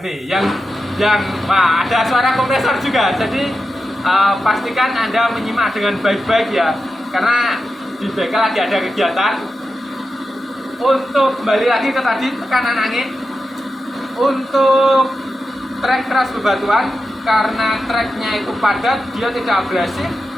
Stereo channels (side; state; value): both; normal; correlation 0.90